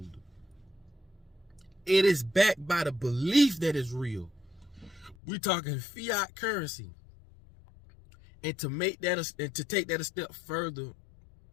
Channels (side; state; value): right; drops out; at 5.2 s